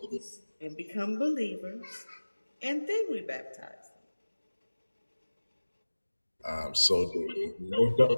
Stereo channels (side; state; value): both; inverted; correlation -1.00